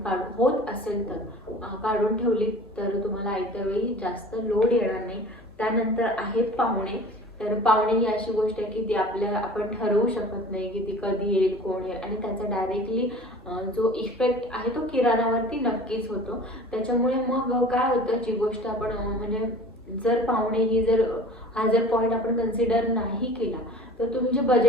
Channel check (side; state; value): left; noise; hum, 26 dB below the sound